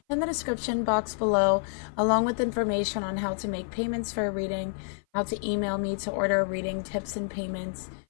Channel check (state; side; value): silent; right; 55 dB below the other